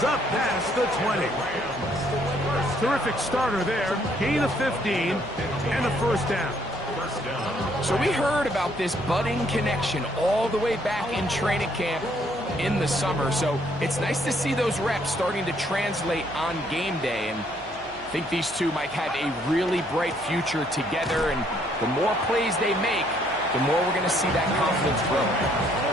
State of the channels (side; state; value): right; noise; hum, 21 dB below the sound